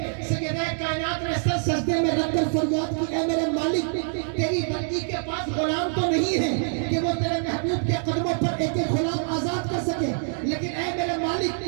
سیدہ کائنات نے سر سجدے میں رکھ کر فریاد کی اے میرے مالک تیری بندی کے پاس غلام تو نہیں ہے کہ وہ تیرے محبوب کے قدموں پر ایک ایک غلام آزاد کر سکے, لیکن اے میرے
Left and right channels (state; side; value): silent; left; 62 dB below the other